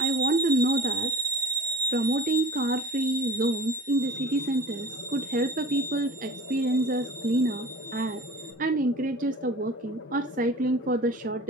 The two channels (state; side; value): normal; both; correlation 0.40